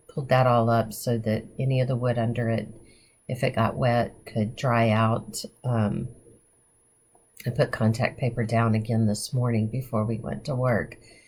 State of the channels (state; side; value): identical; both; correlation 1.00